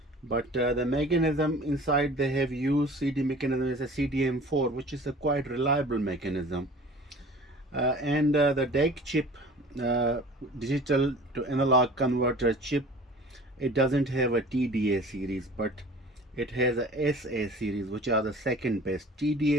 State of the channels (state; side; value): normal; both; correlation 0.44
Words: but the mechanism inside they have used CD mechanism is a CDM-4, which is a quite reliable mechanism. And the DAC chip, digital to analog converter chip, it doesn't have a TDA series, but it has a SA series, which are the second best.